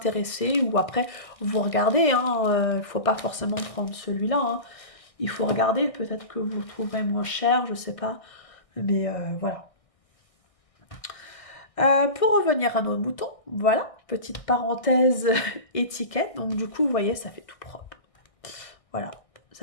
Ou après, vous regardez, hein, il ne faut pas forcément prendre celui-là, hein. Il faut regarder, peut-être que vous le trouverez moins cher, je sais pas. Mais voilà. Pour revenir à nos moutons, voilà, petite parenthèse étiquette. Donc du coup, vous voyez, ça fait tout propre. Voilà,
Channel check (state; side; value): late; right; 1.6 ms